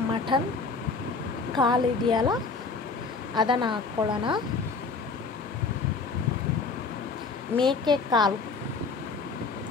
ಮಟನ್ ಕಾಲು ಇದೆಯಲ್ಲ ಅದನ್ನು ಹಾಕ್ಕೊಳ್ಳೋಣ. ಮೇಕೆ ಕಾಲು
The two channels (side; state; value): right; quieter; 4.4 dB